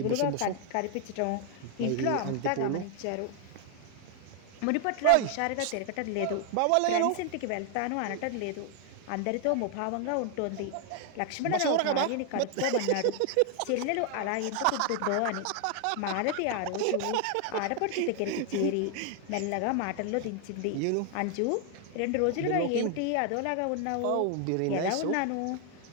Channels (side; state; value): both; different; correlation 0.00